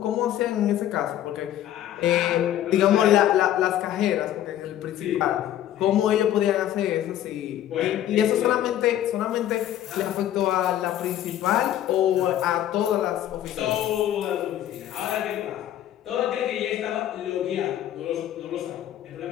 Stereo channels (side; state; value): right; quieter; 12.0 dB